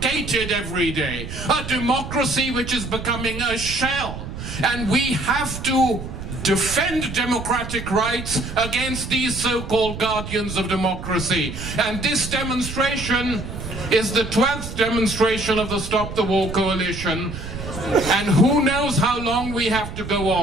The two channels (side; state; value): right; noise; rumble, 8 dB below the sound